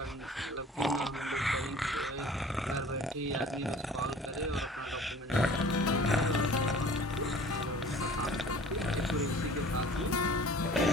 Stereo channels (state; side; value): normal; both; correlation 0.47